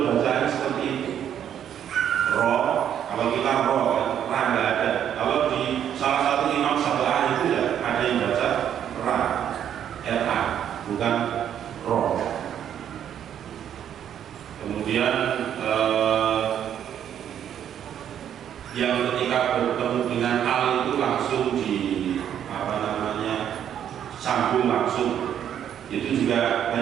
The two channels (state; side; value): quieter; left; 9.6 dB